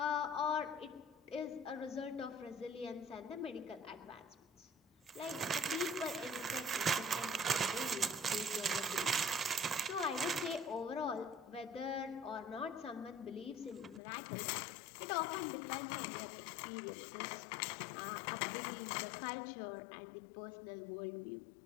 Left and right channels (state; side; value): drops out; right; at 14.0 s